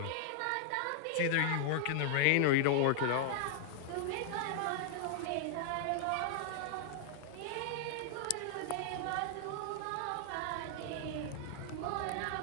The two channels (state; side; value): different; both; correlation -0.01